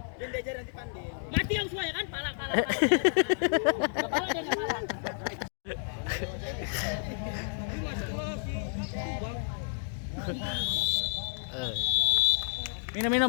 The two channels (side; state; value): right; silent; digital silence